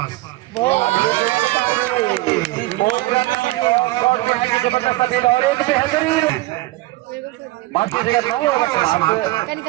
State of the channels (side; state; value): left; quieter; 19.4 dB